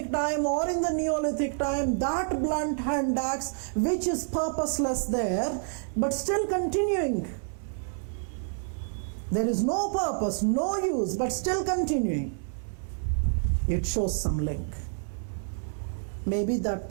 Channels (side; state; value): left; silent; 59 dB below the other